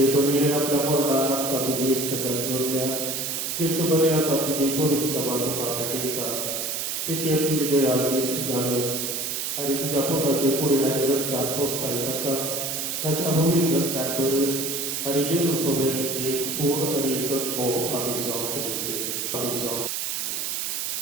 बली आपल्या मरणात आमकां तुझी इष्टकात जोडल्या तीच बली आता तुझी पवित्र सभा तुका भेटयता तिची तुझी दया इष्ट घालत आणि तुझ्या पोटाचे पुढे रक्तात पोचताय ताका ताच्या पवित्र रक्तात भर आणि जेजू सोबत एक पूर्ण आणि एकच भाव आम्ही जाऊ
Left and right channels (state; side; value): noise; right; hiss, 2 dB below the sound